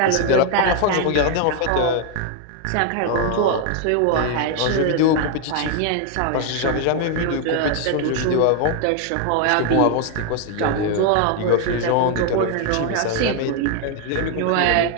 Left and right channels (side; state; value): both; different; correlation 0.01